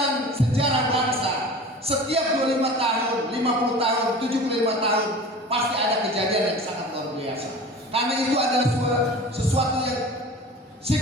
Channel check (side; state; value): both; normal; correlation 0.38